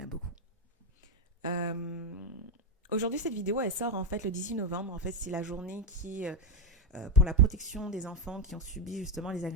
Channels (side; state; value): both; normal; correlation 0.07